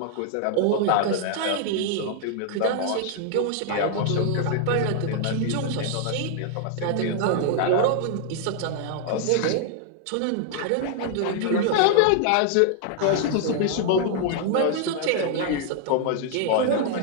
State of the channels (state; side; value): different; both; correlation 0.00